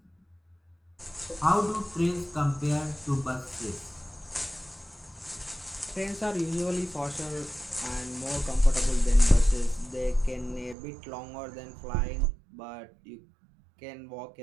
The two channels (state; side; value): drops out; left; at 10.8 s